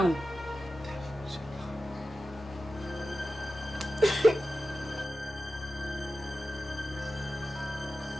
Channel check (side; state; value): both; normal; correlation 0.93